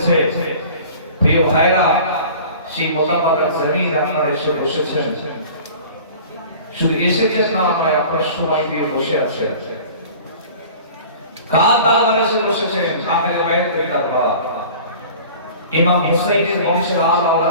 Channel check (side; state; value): both; inverted; correlation -0.43